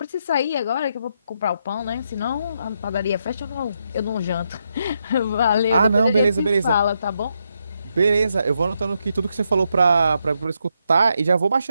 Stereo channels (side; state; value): both; inverted; correlation -0.80